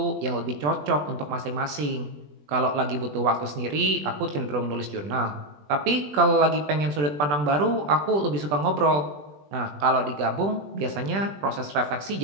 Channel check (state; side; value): late; left; 20 ms